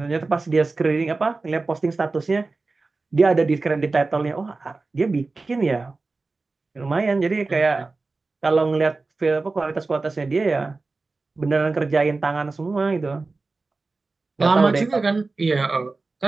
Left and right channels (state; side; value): quieter; left; 3.7 dB